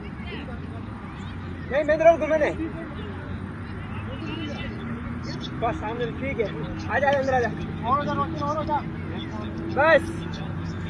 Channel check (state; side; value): identical; both; correlation 1.00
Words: नहीं बेंदर घूमे नहीं बस सामने, ठीक है आजा अंदर आजा, और जा बस।